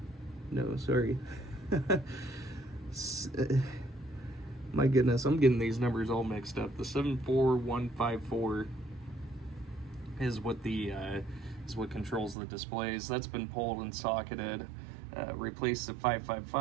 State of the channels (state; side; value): drops out; left; at 12.4 s